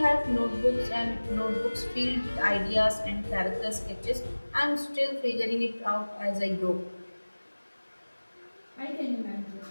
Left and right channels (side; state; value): both; inverted; correlation -1.00